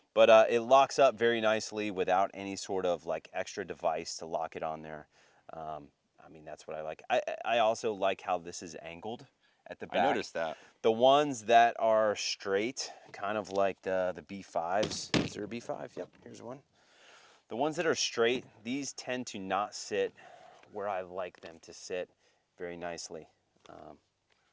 But it locks up very nicely without any sort of like extra device to lock it on there. I mean, that's what I like. I also like how this is angled at the I back. noticed that. The ones that are straight, kind of like the B5s. Is there a B5? Yep, here's one. The ones that are straight, these tend to not sit where I like them to sit very nicely.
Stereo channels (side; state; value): both; identical; correlation 1.00